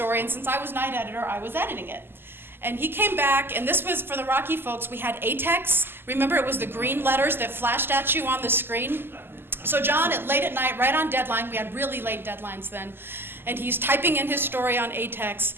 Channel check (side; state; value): left; late; 0.10 ms